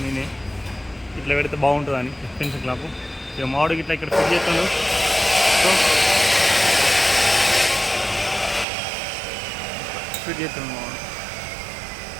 నేనే ఇట్లా పెడితే బాగుంటుందని పెన్సిల్ క్లాపు. ఇక మామిడికి ఇట్లా ఇక్కడ ఫిట్ చేస్తుండు. సో ఫిట్ చేస్తుండు మామిడి.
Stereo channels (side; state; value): left; drops out; at 8.7 s